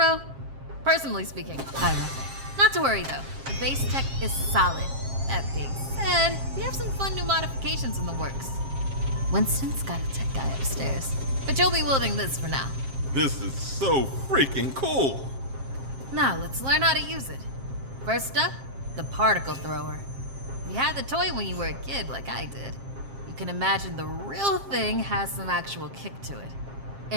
Personally speaking, I love it. Not to worry though, the base tech is solid. That being said, we have some fun new modifications in the works. Winston's got a tech guy upstairs, but you'll be wielding this for now. This is so freaking cool. Now, let's learn how to use it. First up, the particle thrower. If you had the toy when you were a kid, like I did, you can imagine the real thing has some actual kick to it.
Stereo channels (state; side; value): late; left; 7.5 ms